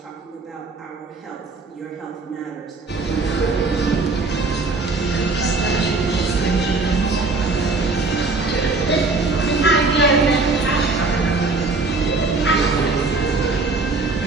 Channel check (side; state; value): left; quieter; 3.7 dB